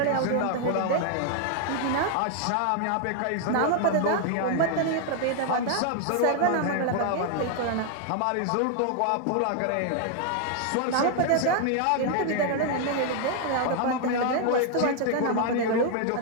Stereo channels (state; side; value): different; both; correlation 0.00